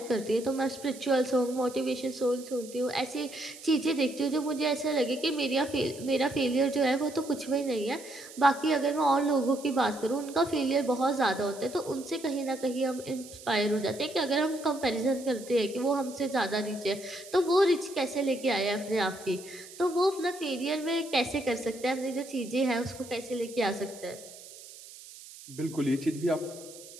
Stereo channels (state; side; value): noise; right; hiss, 17 dB below the sound